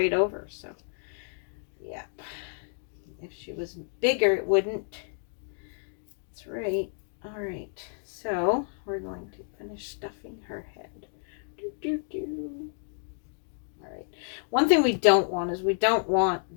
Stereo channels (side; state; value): right; silent; digital silence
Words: over. So, yeah. If she was bigger, it wouldn't. That's right. All right. So, we're going to finish stuffing her head. All right. One thing we don't want is we don't want